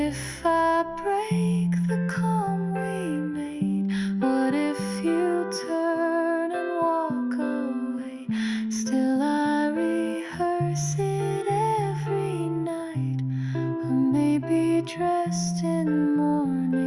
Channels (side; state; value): both; identical; correlation 1.00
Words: I break the calm we made? What if you turn and walk away? Still I rehearse it every night. Or maybe dressed in